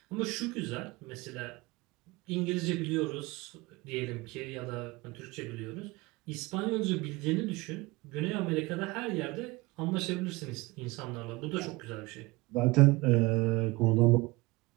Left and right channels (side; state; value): left; quieter; 22.6 dB